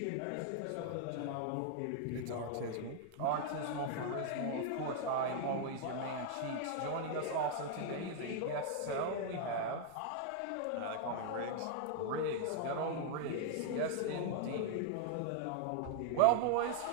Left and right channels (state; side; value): different; both; correlation 0.00